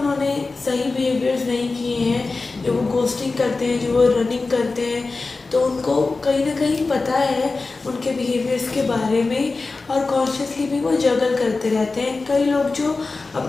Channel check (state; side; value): quieter; right; 3.8 dB